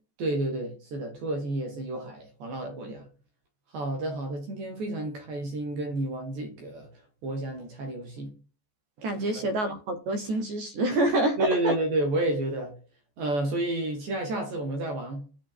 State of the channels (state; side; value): late; left; 14 ms